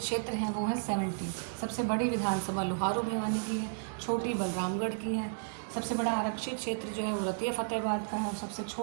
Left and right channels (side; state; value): left; silent; digital silence